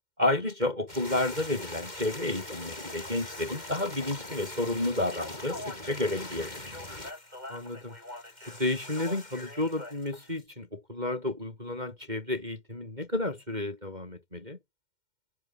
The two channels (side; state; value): left; late; 2.1 ms